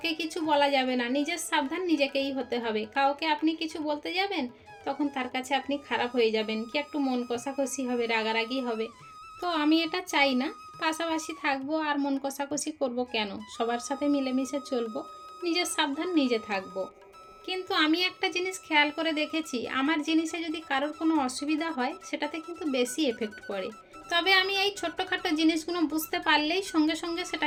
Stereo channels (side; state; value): both; identical; correlation 1.00